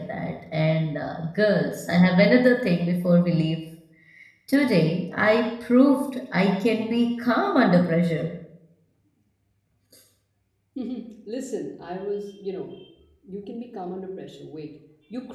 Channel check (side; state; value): both; identical; correlation 1.00